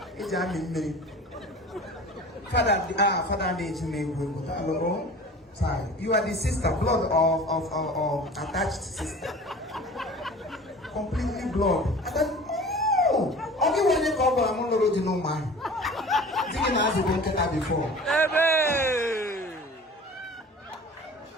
It's me. Father, sorry. You are the sister, blood of attached sister. Completely blood. And then, only when you come, I'm not already know man. Didn't ask the banker before.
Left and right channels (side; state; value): both; normal; correlation 0.41